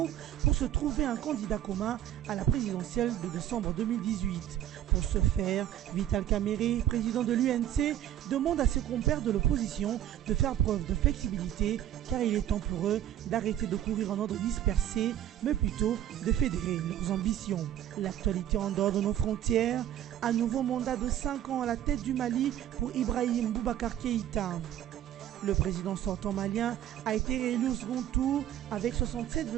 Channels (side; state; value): left; quieter; 11.7 dB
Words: pour se trouver un candidat commun à la présidentielle de décembre 2018. Pour ce faire, Vital Kamerhe, président de l'UNC, demande à ses compères de l'opposition de faire preuve de flexibilité car il est temps pour eux d'arrêter de courir en ordre dispersé, mais plutôt de fédérer leurs ambitions. L'actualité en dehors de nos frontières, un nouveau mandat de 5 ans à la tête du Mali pour Ibrahim Boubacar Keïta. Le président sortant malien a été réélu au second tour avec